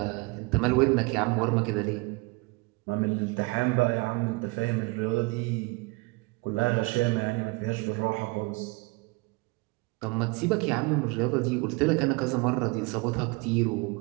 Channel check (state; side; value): quieter; left; 26.4 dB